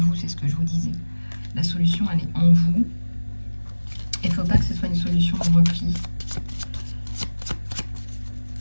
c'est ce que je vous disais. La solution, elle est en vous. Il ne faut pas que ce soit une solution de repli.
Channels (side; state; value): both; inverted; correlation -1.00